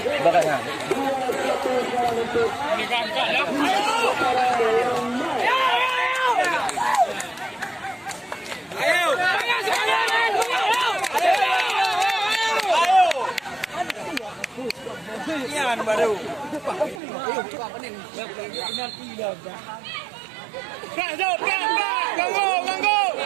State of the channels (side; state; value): left; drops out; at 17.0 s